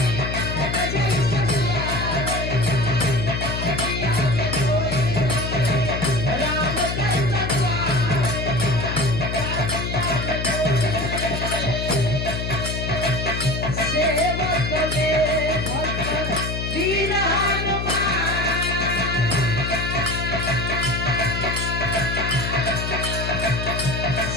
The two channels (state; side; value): noise; left; hum, 3 dB below the sound